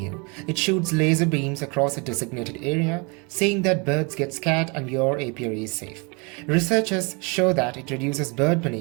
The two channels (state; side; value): quieter; left; 30.6 dB